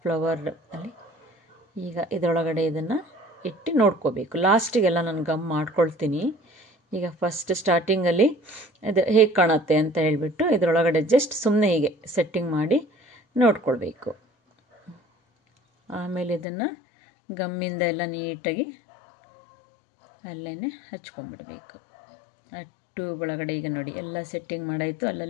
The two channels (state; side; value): drops out; right; at 16.4 s